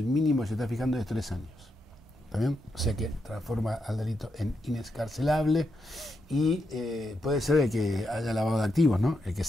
mínimo que se está fijando es 3 años. ¿Está bien? O sea que transforma al delito en inescarcelable y puede ser el que haya lavado de activos, ¿no? El que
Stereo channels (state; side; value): normal; both; correlation 0.83